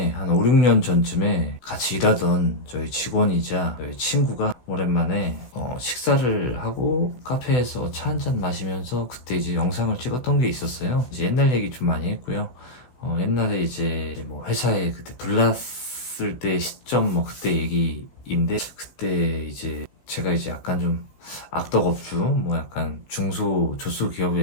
한 5, 6년 전쯤에 같이 일하던 저희 직원이자 저희 친구가 오랜만에 식사를 하고 카페에서 차 한잔 마시면서 그때 이제 영상을 찍었던 게 있었어요. 이제 옛날 얘기 좀 많이 했고요. 옛날에 이제 뭐 회사에 그때 불났을 때 시점 뭐 그때 얘기인데, 그때 이제 제가 이제 약간 좀 악덕업주, 뭐 약간 중소조소 기업의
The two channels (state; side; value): late; right; 16 ms